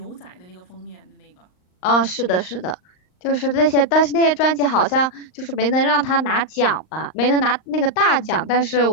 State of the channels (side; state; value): right; late; 39 ms